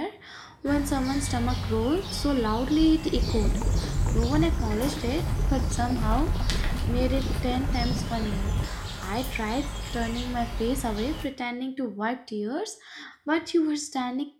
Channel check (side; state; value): both; identical; correlation 1.00